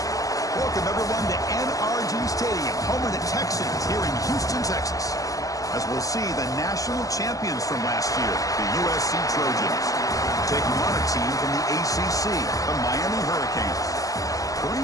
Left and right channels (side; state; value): right; late; 0.17 ms